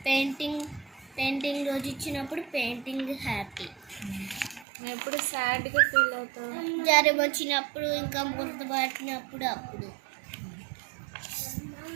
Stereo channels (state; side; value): drops out; left; at 4.7 s